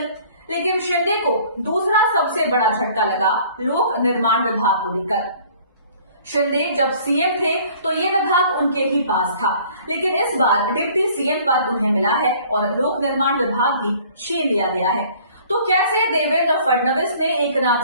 लेकिन शिंदे को दूसरा सबसे बड़ा झटका लगा लोक निर्माण विभाग को लेकर। शिंदे जब सीएम थे तो ये विभाग उनके ही पास था, लेकिन इस बार डिप्टी सीएम पद उन्हें मिला है और लोक निर्माण विभाग भी छीन लिया गया है। तो कैसे देवेंद्र फडणवीस ने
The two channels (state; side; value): inverted; both; correlation -0.53